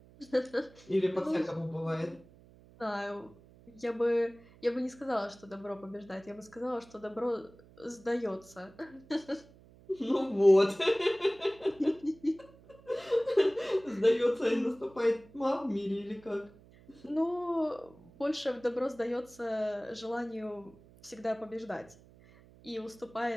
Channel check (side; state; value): right; noise; hum, 24 dB below the sound